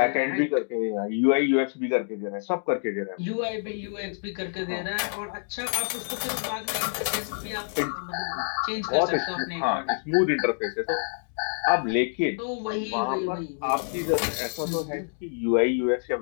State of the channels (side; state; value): right; silent; digital silence